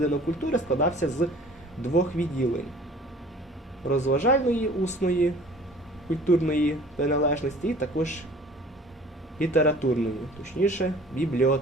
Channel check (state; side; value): normal; both; correlation 0.49